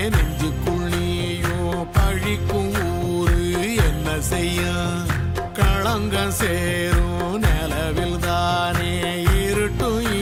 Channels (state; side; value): identical; both; correlation 1.00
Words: நெஞ்சுக்குள் நீயும் பழிக்கும் ஊரு என்ன செய்ய களங்கம் சேரும் நிலவில் தானே இருட்டும்